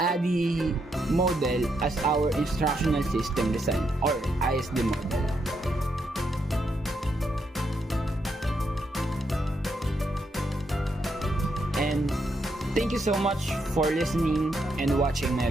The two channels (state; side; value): normal; both; correlation 0.79